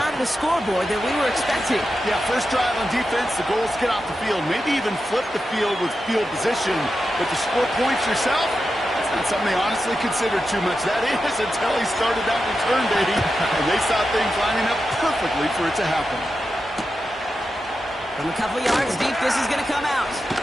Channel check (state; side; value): normal; both; correlation 0.90